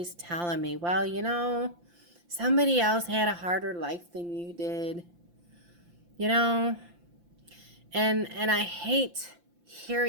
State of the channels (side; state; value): left; late; 5.8 ms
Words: telling me, well, you know, somebody else had a harder life than you did, you know, and I hate